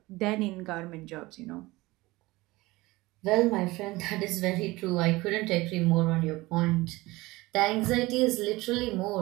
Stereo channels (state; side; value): quieter; left; 20.6 dB